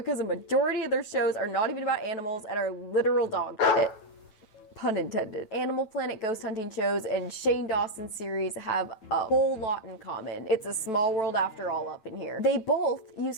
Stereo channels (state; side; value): late; right; 9.1 ms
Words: a majority of their shows are not even about animals and are literal dog shit. Pun intended. Animal Planet ghost hunting shows and Shane Dawson's series have a whole lot in common. It's a small world after all up in here. They both use